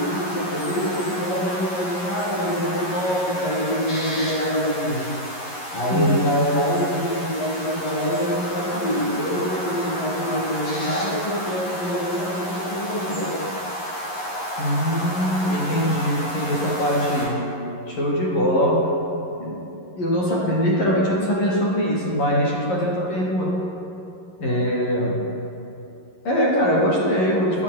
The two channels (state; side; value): late; right; 11 ms